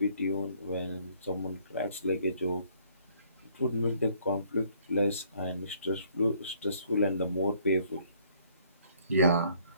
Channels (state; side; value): inverted; both; correlation -0.63